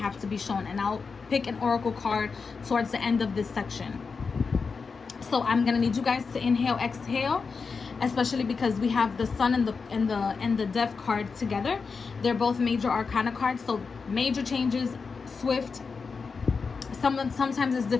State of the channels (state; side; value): quieter; right; 5.0 dB